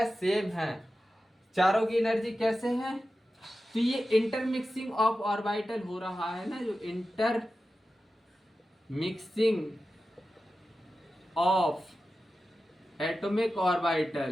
सेम है, चारों की एनर्जी कैसे है, तो ये इंटरमिक्सिंग ऑफ ऑर्बिटल हो रहा है ना, जो inter mixing of atomic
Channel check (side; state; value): both; normal; correlation 0.93